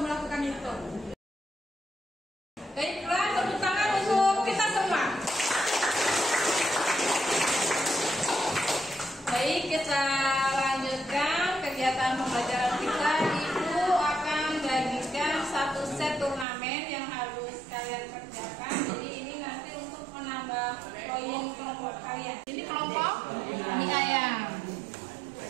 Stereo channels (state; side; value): drops out; left; at 16.4 s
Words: melakukan itu? Baiklah, tepuk tangan untuk kita semua. Baik, kita lanjutkan kegiatan pembelajaran kita. Ibu akan bagikan 1 set turnamen yang harus kalian kerjakan. Jadi ini nanti untuk menambah poin kelompok kalian. Ini kelompok mie ayam,